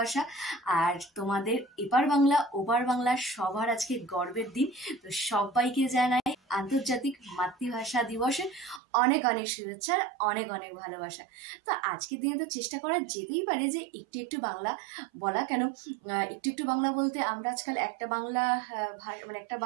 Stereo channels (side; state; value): left; drops out; at 8.8 s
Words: আর তোমাদের এপার বাংলা ওপার বাংলা সবার আজকে গর্বের দিন। তো সবাইকে জানাই আন্তর্জাতিক মাতৃভাষা দিবসের অনেক অনেক শুভেচ্ছা, অনেক অনেক ভালোবাসা। তো আজকের দিনে তো চেষ্টা করা যেতেই পারে যে একটু একটু বাংলা বলা। কেন একটু একটু বাংলা বলতে, আমরা আজকাল একটা বাংলা মানে একটা